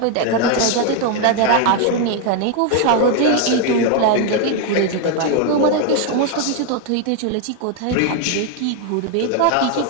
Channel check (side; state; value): both; different; correlation 0.01